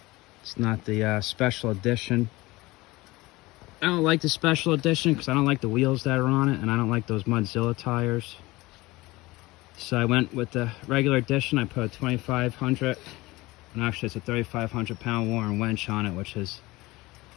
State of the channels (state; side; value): quieter; right; 20.7 dB